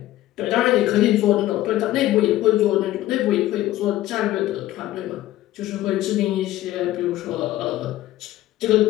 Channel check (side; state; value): right; quieter; 15.0 dB